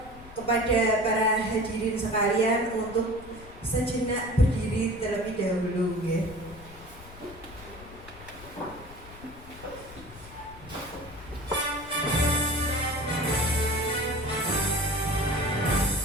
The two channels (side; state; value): left; noise; rumble, 18 dB below the sound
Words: kepada para hadirin sekalian untuk sejenak berdiri terlebih dahulu, ya.